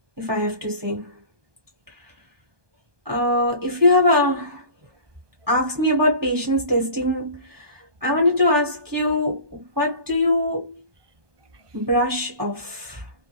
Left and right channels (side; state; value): left; late; 1.2 ms